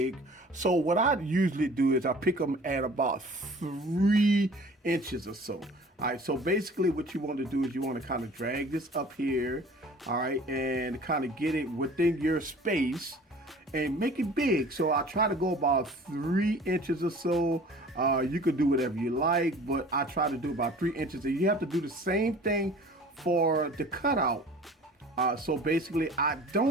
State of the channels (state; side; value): normal; both; correlation 0.46